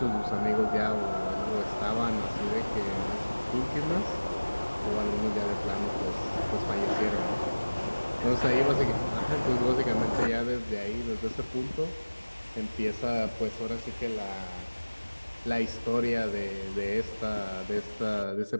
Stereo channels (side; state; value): both; inverted; correlation -1.00